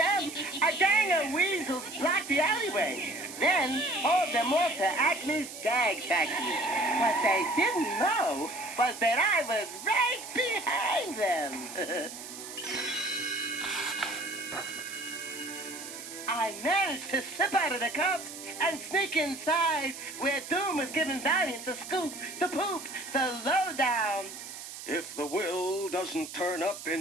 A gang of weasels blocked the alleyway. Then hauled them off to Acme's gag factory. What they didn't know was that I was right behind them. I managed to slip out of the cuffs and sneak inside where Doom was giving Valiant the scoop, the poop, the lowdown. If the will doesn't turn up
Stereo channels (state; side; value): noise; right; hiss, 11 dB below the sound